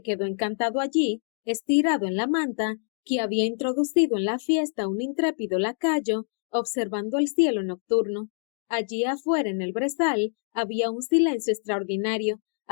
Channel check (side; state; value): right; silent; digital silence